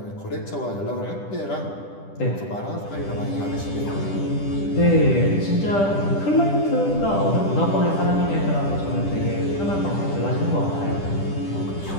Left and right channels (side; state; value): right; late; 10 ms